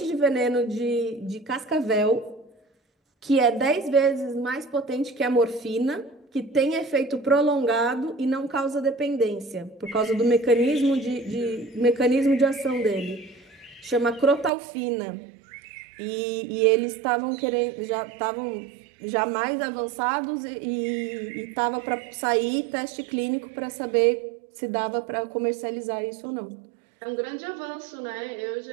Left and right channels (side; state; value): left; drops out; at 14.5 s